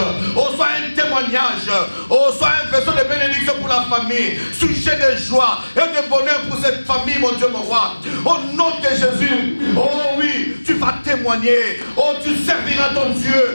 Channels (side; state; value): both; inverted; correlation -1.00